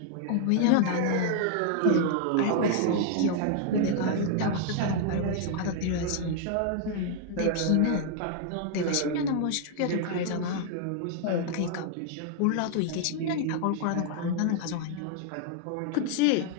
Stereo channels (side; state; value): both; different; correlation 0.00